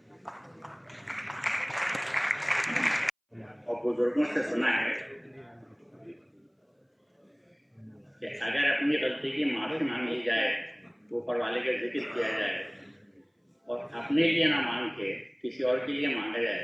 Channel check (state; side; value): identical; both; correlation 1.00